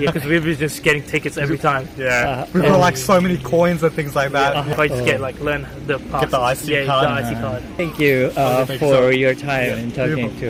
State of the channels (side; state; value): both; identical; correlation 1.00